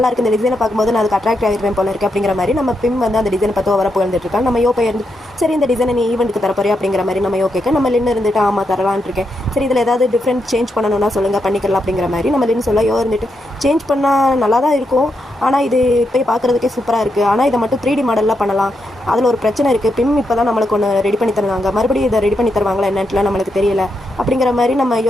இருக்குது, இந்த டிசைனை பார்க்கும்போது நான் அதுக்கு அட்ராக்ட் ஆகிருப்பேன் போல இருக்குது அப்படிங்கிற மாதிரி நம்ம பிம் வந்து அந்த டிசைனை பார்த்து வர புகழ்ந்துட்டு இருக்கா. நம்ம யோகா இருந்து சரி இந்த டிசைனை நீ ஈவெண்ட்டுக்கு தரப்போறியா அப்படிங்கிற மாதிரி நம்ம யோகேக்க நம்ம லின் இருந்துட்டு ஆமாம் தரலான் இருக்கேன், சரி இதில் ஏதாவது டிஃப்ரெண்ட் சேஞ்ச் பண்ணணும்னா சொல்லுங்கள் பண்ணிக்கலாம் அப்படிங்கிற மாதிரி நம்ம லின் சொல்ல யோ இருந்துட்டு சேஞ்ச் பண்ணால் நல்லா தான் இருக்கும், ஆனால் இது இப்போ பார்க்குறதுக்கே சூப்பராக இருக்குது, ஆனால் இதை மட்டும் 3D மாடலில் பண்ணலாம், அதில் ஒரு பிரச்சனை இருக்குது, பிம் இப்போ தான் நம்மளுக்கு ஒன்று ரெடி பண்ணி தருவாங்க, மறுபடியும் இதை ரெடி பண்ணி தருவாங்களா என்னன்ட்டுலாம் நம்மளுக்கு தெரியல அப்படிங்கிற மாதிரி நம்ம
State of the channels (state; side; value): normal; both; correlation 0.83